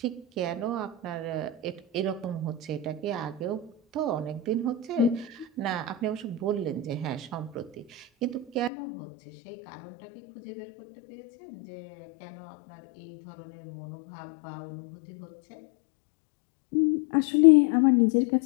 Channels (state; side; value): drops out; right; at 8.7 s